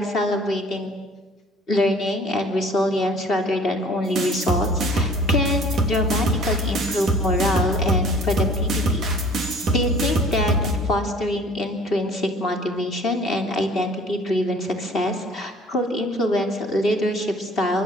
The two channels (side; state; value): both; normal; correlation 0.51